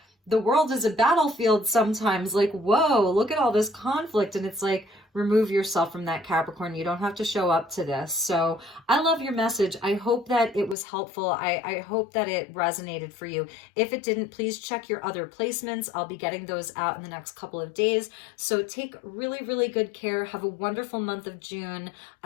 the world is a battlefield sometimes. Like, whoa, look at all this conflict. And it's like, remove yourself from that, Capricorn. You don't have to show up to this. So I love your message. I hope that it was helpful. I hope that it resonated for you. If it didn't, please check your other placements. I'll be getting those out in the next couple of days. So take really, really good care. Have a wonderful month of June.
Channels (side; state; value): right; drops out; at 10.8 s